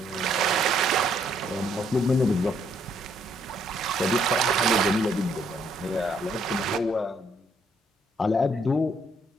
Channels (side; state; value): both; normal; correlation 0.69